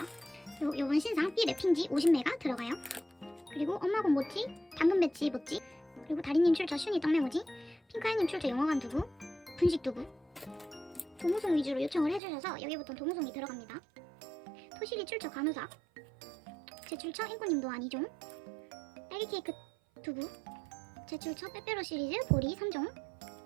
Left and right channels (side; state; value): left; drops out; at 12.2 s